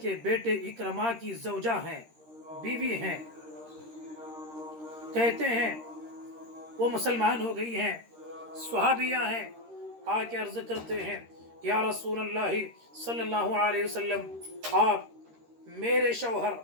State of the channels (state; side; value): late; left; 13 ms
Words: बेटे इकरमा की ज़ौजा हैं, बीवी हैं, कहते हैं वो मुसलमान हो गई हैं, स्वहाबिया हैं, आके अर्ज करते हैं या रसूल अल्लाह सल्लल्लाहु अलैहि वसल्लम, आप मेरे शौहर